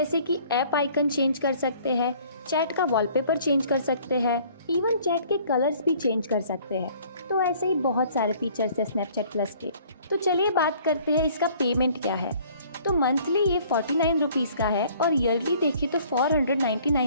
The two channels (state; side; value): inverted; both; correlation -0.56